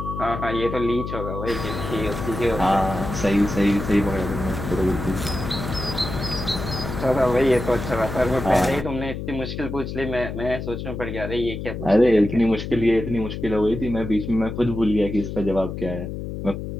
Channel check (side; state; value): left; noise; hum, 6 dB below the sound